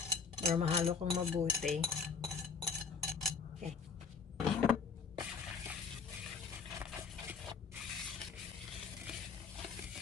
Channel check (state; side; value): quieter; right; 5.5 dB